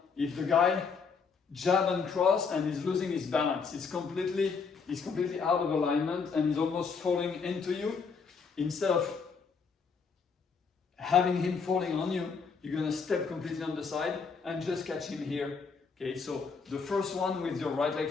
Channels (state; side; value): quieter; right; 5.3 dB